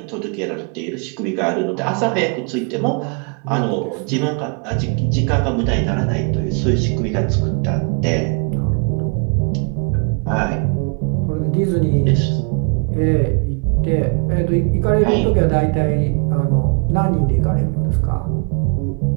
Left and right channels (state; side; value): quieter; left; 37.5 dB